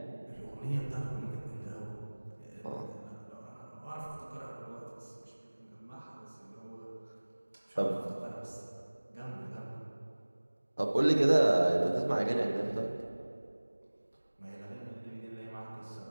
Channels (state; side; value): inverted; both; correlation -1.00